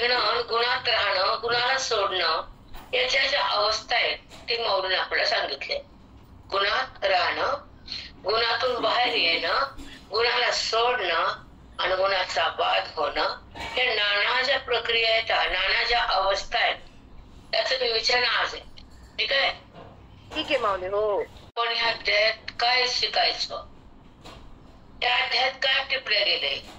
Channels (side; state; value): both; identical; correlation 1.00